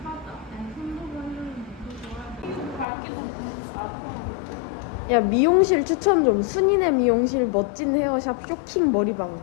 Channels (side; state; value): right; drops out; at 2.9 s